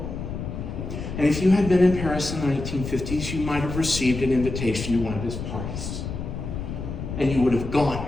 And if you had been in Paris in the 1950s, you might have received an invitation to one of his parties. and you would have gone.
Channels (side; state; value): left; noise; rumble, 6 dB below the sound